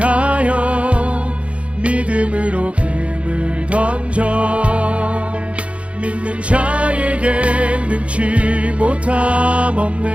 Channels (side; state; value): left; late; 0.062 ms